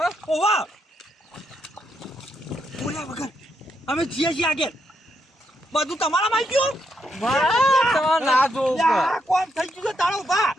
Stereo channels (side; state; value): both; normal; correlation 0.80